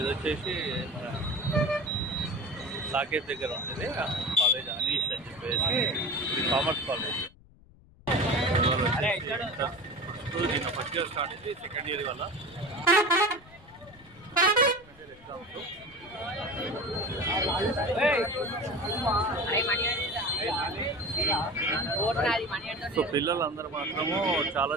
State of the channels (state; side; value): noise; left; rumble, 25 dB below the sound